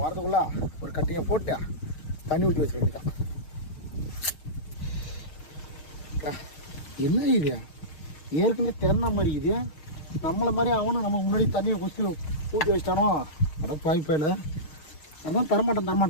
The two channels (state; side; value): late; right; 6.4 ms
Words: வரதுக்குள்ள ஒரு கட்டிங்கை போட்டு தண்ணி ஊற்றி வச்சுக்க வேண்டியதான். என்ன இது ஏற்கனவே திறன மாதிரி இது நம்மளை மாதிரி அவனும் நம்ம முன்னாடி தண்ணியை குச்சி ஊற்றி வச்சிட்டானோ? அட பாய்ப்பாயில் அதான்